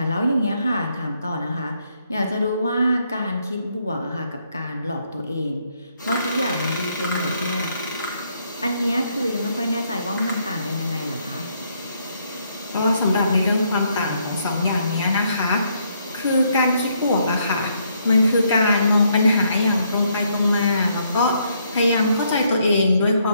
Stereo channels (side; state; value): both; inverted; correlation -0.73